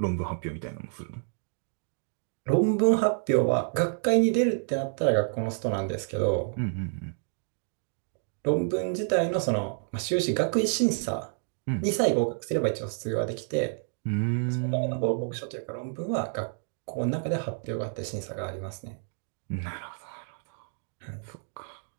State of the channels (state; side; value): silent; left; 58 dB below the other